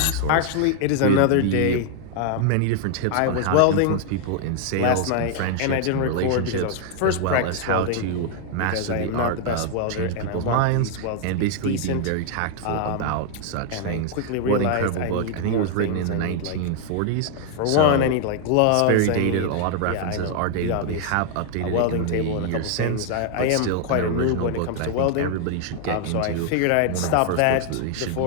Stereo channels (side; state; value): both; different; correlation 0.00